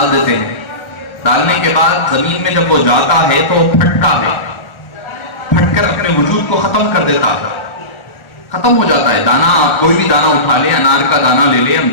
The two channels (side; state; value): right; late; 1.4 ms